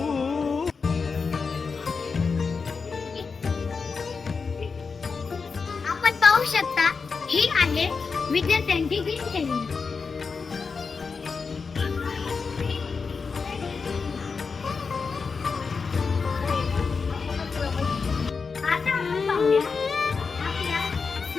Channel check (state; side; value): quieter; right; 5.0 dB